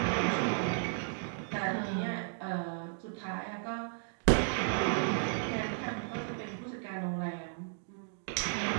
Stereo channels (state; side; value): silent; left; digital silence